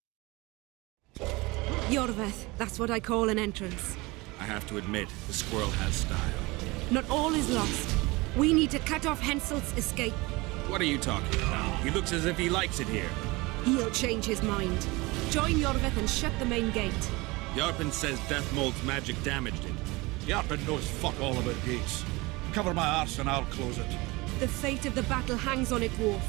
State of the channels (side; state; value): left; quieter; 23.4 dB